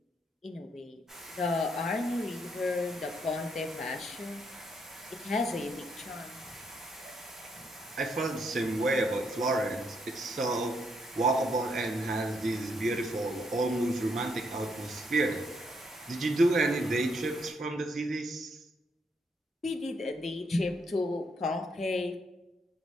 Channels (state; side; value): normal; both; correlation 0.75